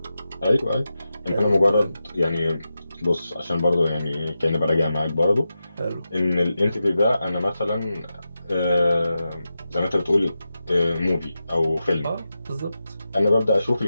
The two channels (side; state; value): both; inverted; correlation -0.91